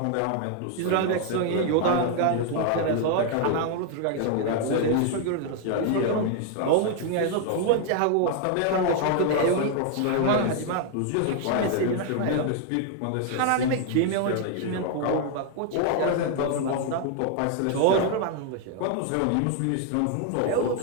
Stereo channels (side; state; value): both; different; correlation 0.00